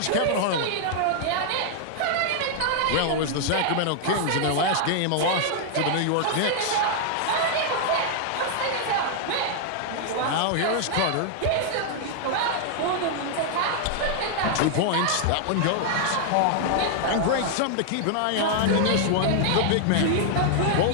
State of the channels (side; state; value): both; different; correlation -0.01